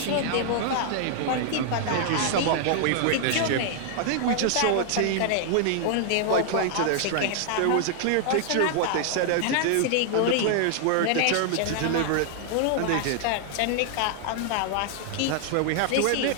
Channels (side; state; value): both; different; correlation -0.01